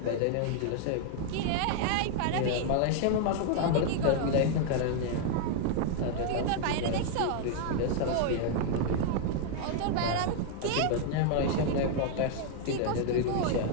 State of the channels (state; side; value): different; both; correlation 0.00